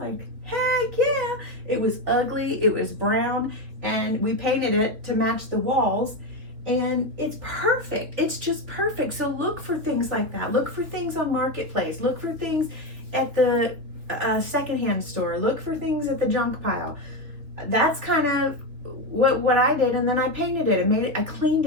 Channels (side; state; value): left; late; 3.6 ms